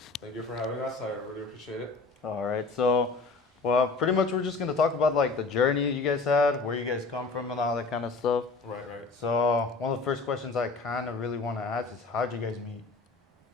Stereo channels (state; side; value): quieter; right; 4.0 dB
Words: Thank you for having us. I really appreciate it. All right, so, well, pretty much we're just going to talk about like the journey you guys had, where you guys come from, and all that kind of stuff. Right. So, one of the first questions I kind of really want to ask is how'd you guys meet?